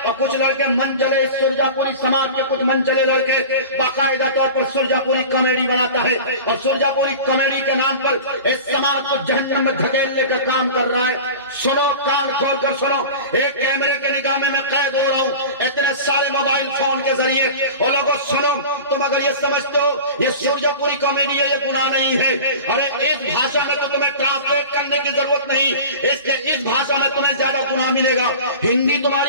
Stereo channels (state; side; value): inverted; both; correlation -0.34